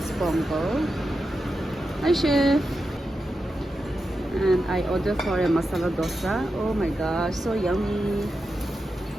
pongal. Hi chef. And I ordered for a masala dosa. Oh my gosh, so yummy.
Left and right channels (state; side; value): normal; both; correlation 0.89